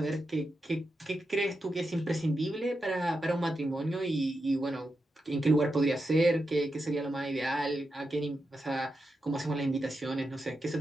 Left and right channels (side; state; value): both; normal; correlation 0.87